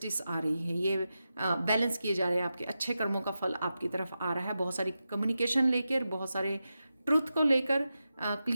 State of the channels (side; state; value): both; inverted; correlation -0.91